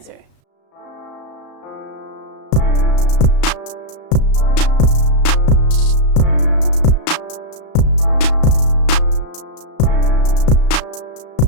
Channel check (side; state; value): right; late; 35 ms